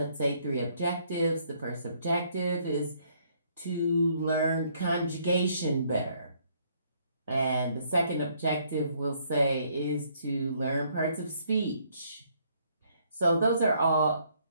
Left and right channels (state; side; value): inverted; both; correlation -0.67